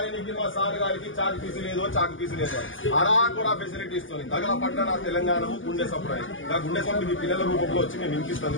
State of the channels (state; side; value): late; right; 0.57 ms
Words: మా సార్ గారికి చాకు పీసు లేదో చాకు పీసు లేదో అరా కూడా ఫెసిలిటీ ఇస్తుంది తగల పట్టణ తెలంగాణ గుండె సప్లై ఆ గుండె సప్లై మీ పిల్లల రూపంలో వచ్చి మేము